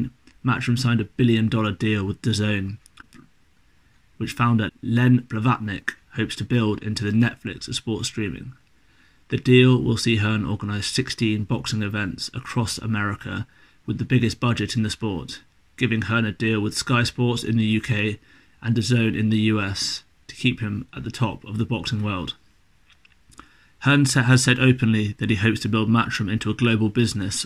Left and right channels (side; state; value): both; identical; correlation 1.00